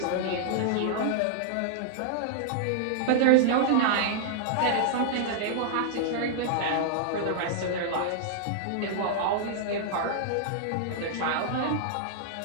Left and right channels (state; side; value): different; both; correlation -0.01